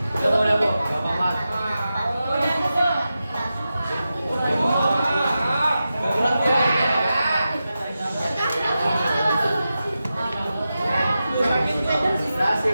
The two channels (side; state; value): both; inverted; correlation -0.91